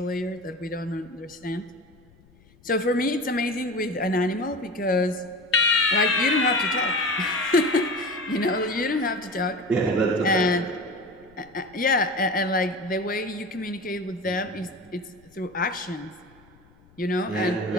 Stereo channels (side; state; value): left; noise; rumble, 29 dB below the sound